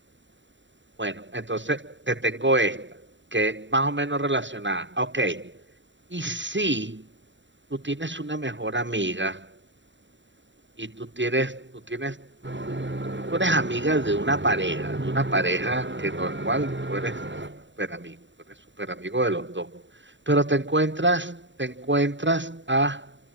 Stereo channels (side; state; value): left; late; 0.54 ms